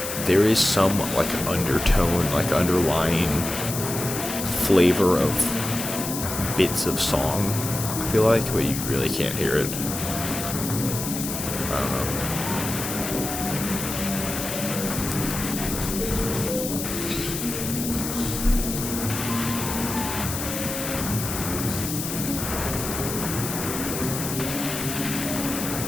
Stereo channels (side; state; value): left; noise; hiss, 5 dB below the sound